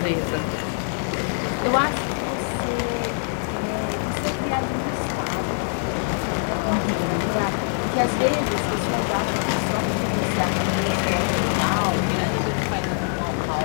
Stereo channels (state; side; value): silent; right; 63 dB below the other